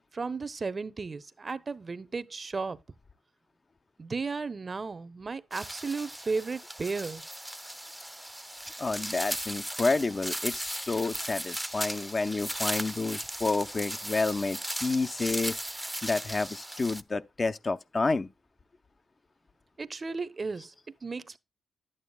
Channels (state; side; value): normal; both; correlation 0.94